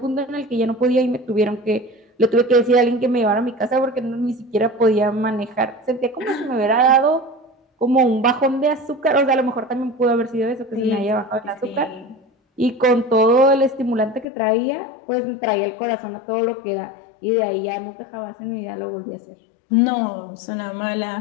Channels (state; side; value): drops out; right; at 14.2 s